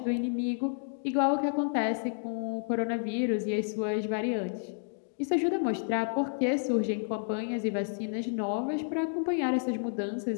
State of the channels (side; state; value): right; silent; digital silence